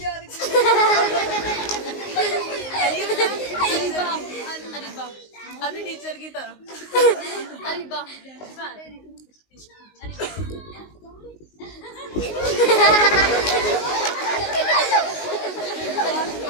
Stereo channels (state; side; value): late; right; 19 ms